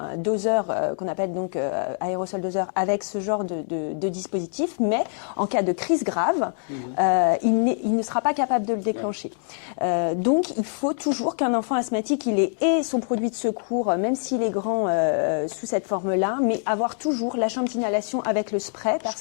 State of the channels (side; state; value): right; silent; digital silence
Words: doseur qu'on appelle donc aérosol doseur avec ce genre de dispositif, mais en cas de crise grave, il ne sera pas capable de le déclencher. Donc il faut toujours qu'un enfant asthmatique il ait son produit de secours, même s'il est grand sous cette forme-là, mais avoir toujours la chambre d'inhalation avec le spray